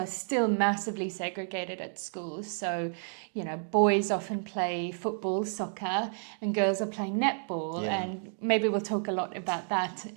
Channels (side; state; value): left; silent; 57 dB below the other